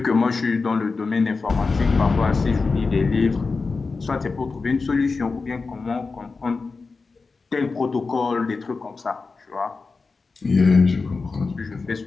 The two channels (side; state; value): right; quieter; 4.2 dB